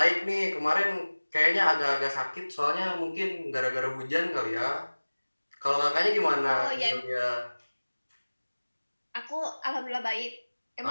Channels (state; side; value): inverted; both; correlation -1.00